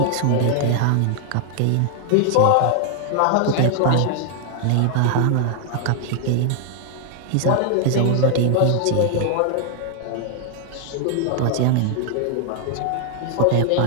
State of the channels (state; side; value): different; both; correlation 0.00